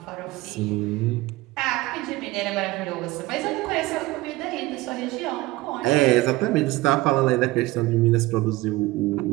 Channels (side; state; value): left; quieter; 19.5 dB